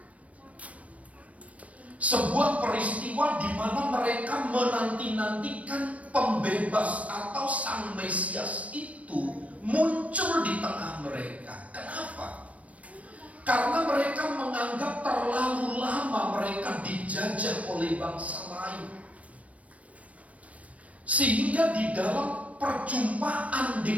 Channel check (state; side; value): late; left; 0.066 ms